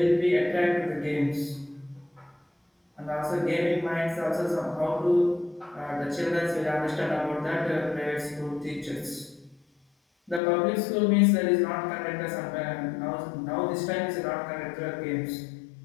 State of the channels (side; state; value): right; drops out; at 10.4 s